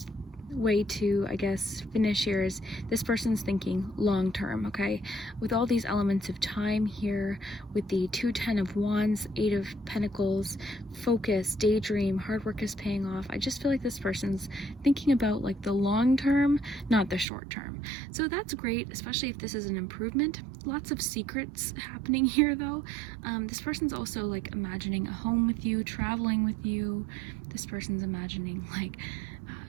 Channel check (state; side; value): drops out; left; at 17.2 s